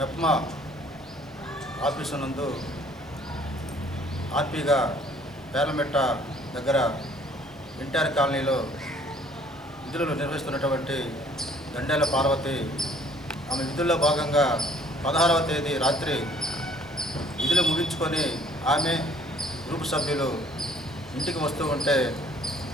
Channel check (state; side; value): normal; both; correlation 0.58